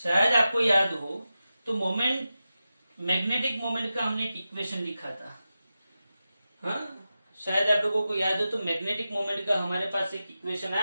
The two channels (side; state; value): both; inverted; correlation -0.92